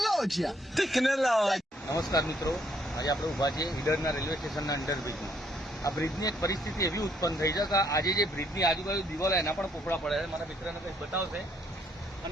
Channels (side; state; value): both; normal; correlation 0.68